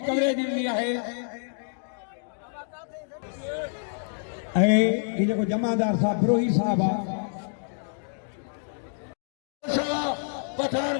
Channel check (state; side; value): silent; right; digital silence